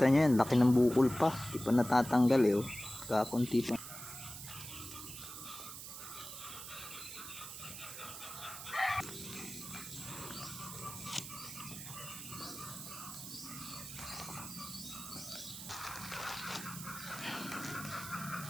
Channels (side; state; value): right; noise; hiss, 10 dB below the sound